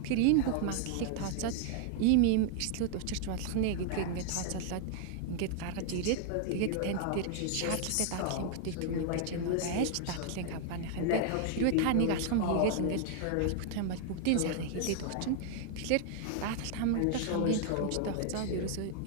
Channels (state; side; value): different; both; correlation 0.00